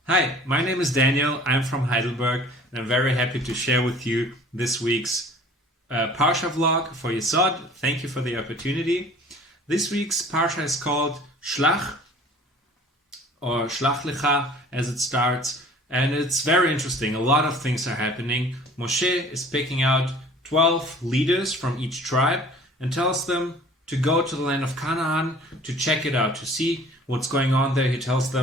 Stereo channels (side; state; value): both; normal; correlation 0.48